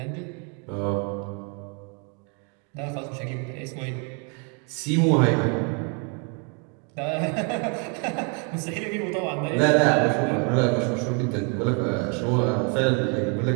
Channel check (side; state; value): left; quieter; 36.1 dB